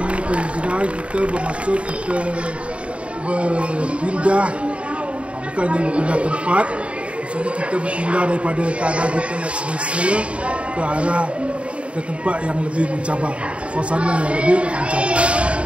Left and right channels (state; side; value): late; left; 0.061 ms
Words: ni, penghijrahan kita bermaksud kita berpindah, bukannya berpindah tempat. Maksudnya kita berpindah daripada keadaan kita yang semasa ke arah ke tempat yang lebih mencabar, suasana yang lebih mencabar.